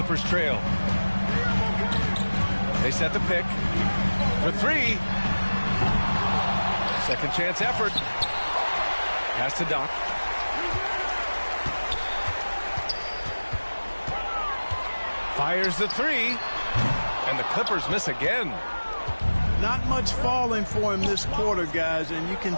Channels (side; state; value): both; inverted; correlation -1.00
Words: trail. They set the pick for 3. Second chance effort. Pass to Doc. Fires the 3. And the Clippers miss again. Not much falling for him this quarter, guys, and you can